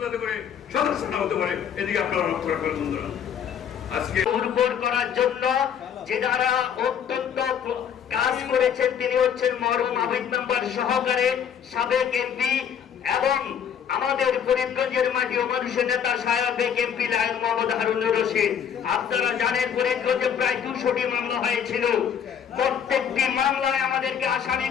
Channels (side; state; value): right; quieter; 8.2 dB